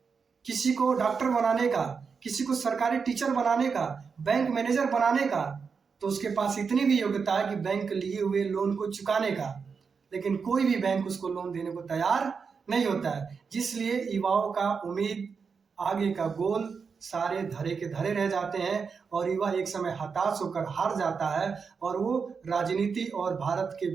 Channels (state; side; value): quieter; left; 5.6 dB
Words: किसी को डॉक्टर बनाने का, किसी को सरकारी टीचर बनाने का, बैंक मैनेजर बनाने का। तो उसके पास इतनी भी योग्यता है कि बैंक लिए हुए लोन को चुकाने का। लेकिन कोई भी बैंक उसको लोन देने को तैयार नहीं होता है, जिसलिए युवाओं का उम्मीद, आगे का गोल सारे धरे के धरे रह जाते हैं और युवा एक समय हताश होकर हार जाता है और वो राजनीति और भारत के